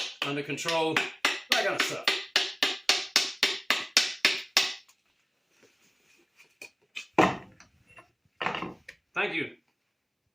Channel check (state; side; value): identical; both; correlation 1.00